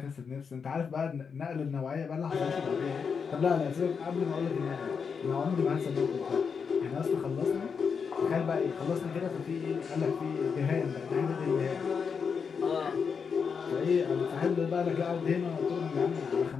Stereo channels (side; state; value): right; quieter; 6.0 dB